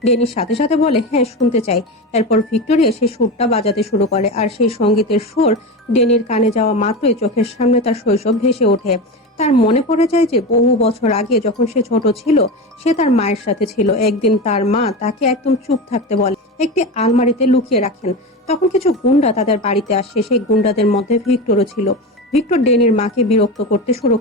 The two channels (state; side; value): normal; both; correlation 0.23